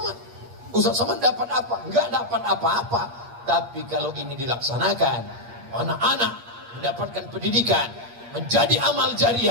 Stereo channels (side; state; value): left; late; 8.5 ms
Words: Ustaz Somad dapat apa? Nggak dapat apa-apa. Tapi kalau ini dilaksanakan, anak-anak mendapatkan pendidikan, menjadi amal